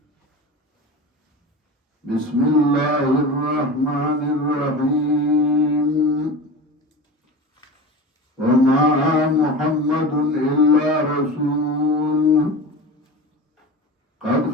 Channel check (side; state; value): both; normal; correlation 0.30